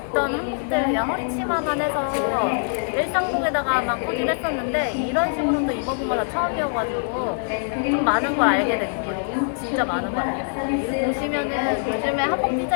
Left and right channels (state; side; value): silent; right; digital silence